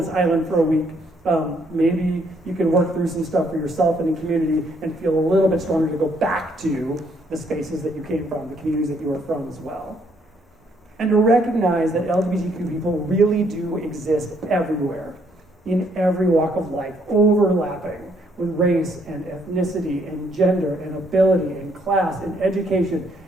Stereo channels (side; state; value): both; normal; correlation 0.69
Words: island for a week. Maybe you can work through some stuff for yourself and in community and feel a little bit stronger to go back to the spaces that you came from, the communities that you were from as well. And to recognize that LGBTQ people really do exist everywhere, in every walk of life, overlapping with race and ethnicity and gender and ability and class and education